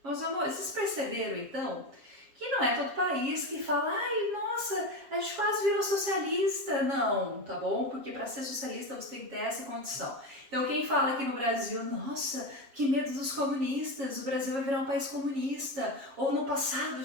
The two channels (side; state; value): left; late; 7.4 ms